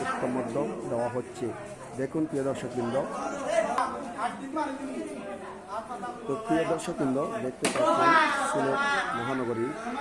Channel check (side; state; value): both; identical; correlation 1.00